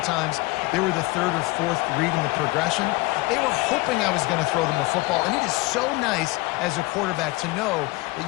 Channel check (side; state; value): right; quieter; 22.0 dB